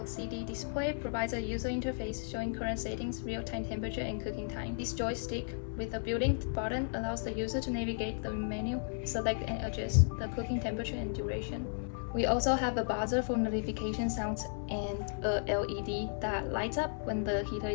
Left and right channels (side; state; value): right; silent; 55 dB below the other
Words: display, provides a user interface showing current settings, real-time temperature, and cooking time. This joystick with a built-in button allows the user to navigate the menu, select and adjust the cooking temperature and duration. We also have a buzzer for notification sounds and a LED that lights up when the heater